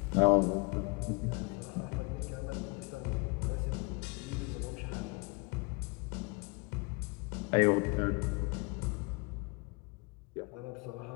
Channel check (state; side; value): quieter; right; 29.6 dB